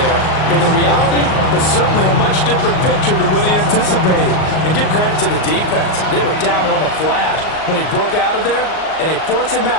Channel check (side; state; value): right; late; 38 ms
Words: And the reality was certainly a much different picture than what he anticipated. And give credit to the defense. They were down on the flash when he broke out of there, and they forced him